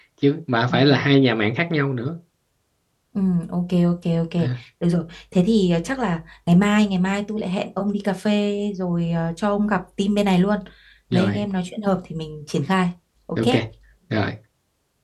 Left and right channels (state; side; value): identical; both; correlation 1.00